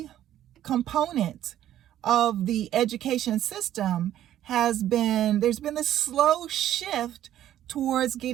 component of the education system there's been this slow shift towards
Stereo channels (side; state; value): left; quieter; 12.0 dB